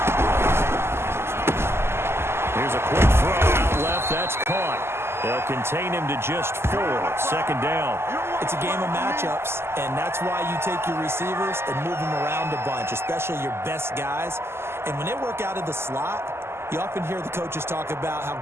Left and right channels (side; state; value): left; late; 0.12 ms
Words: Here's a quick throw out left. That's caught. They'll contain him to just 4. 2nd down. It's a game of matchups, and that's why you take your receivers and move them around a bunch, especially your best guys. And when they work out of the slot, you often hear the coaches talk about how